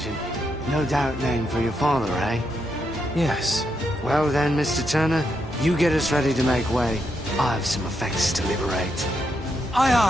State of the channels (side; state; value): both; normal; correlation 0.81